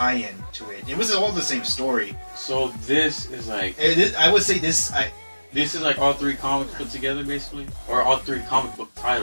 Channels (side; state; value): both; inverted; correlation -1.00